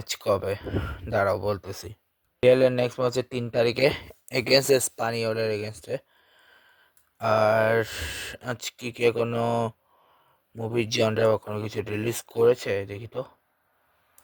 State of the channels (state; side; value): identical; both; correlation 1.00